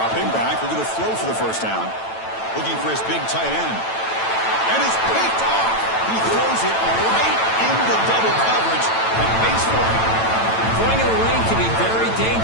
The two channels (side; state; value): right; late; 9.0 ms